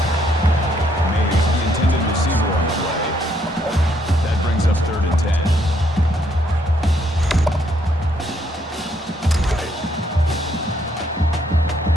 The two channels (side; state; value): both; normal; correlation 0.71